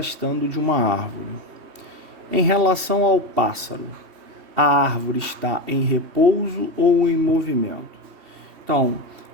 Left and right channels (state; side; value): late; left; 2.7 ms